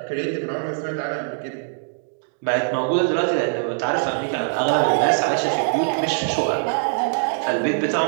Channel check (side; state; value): left; silent; digital silence